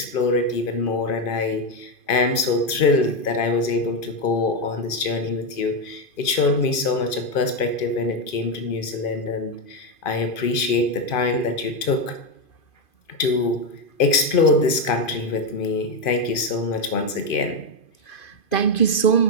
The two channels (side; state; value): right; late; 2.5 ms